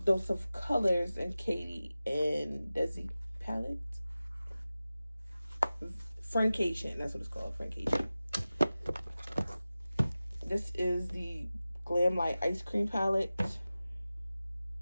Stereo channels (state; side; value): inverted; both; correlation -0.96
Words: Dose of Colors and Katie and Desi palette. Francation, that's what it's called, Francation. This is the Glam Light Ice Cream palette.